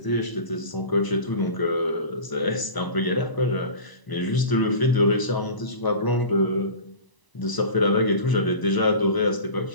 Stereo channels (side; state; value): right; late; 1.0 ms